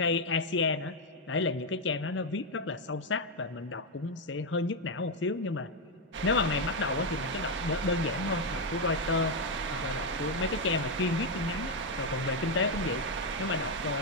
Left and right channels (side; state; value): both; normal; correlation 0.03